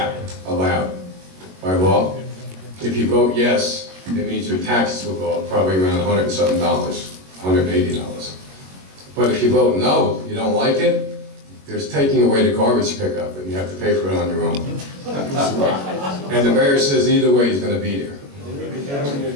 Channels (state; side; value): late; left; 21 ms